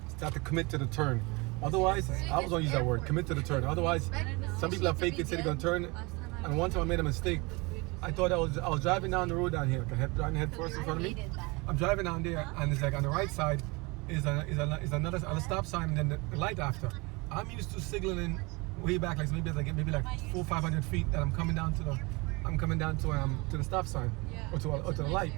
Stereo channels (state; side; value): quieter; left; 26.4 dB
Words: commit to the turn. Otherwise, I was gonna use that word, commit to the turn. Otherwise, some people have faked it, say they're gonna turn. And one time I made a mistake. I thought I was driving down the road down here, driving head first in front of me. I'm driving down there, and it's like on the right side is another stop sign and then the light after. I'm used to signaling way back, like maybe like 400-500 feet that I'm coming down to the stop sign or to the light.